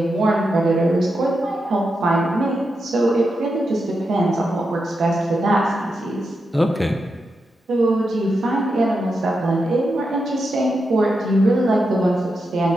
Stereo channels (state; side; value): normal; both; correlation 0.86